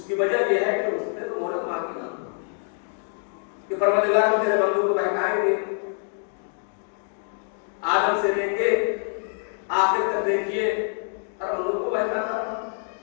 वजह यह है कि उसने तो मोहलत मांगी ना कि परवरदिगार हम तेरे बंदों को बहकाएंगे, आदम से लेके आखिर तक देखिए और बंदों को बहकाता।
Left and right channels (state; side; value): silent; right; 61 dB below the other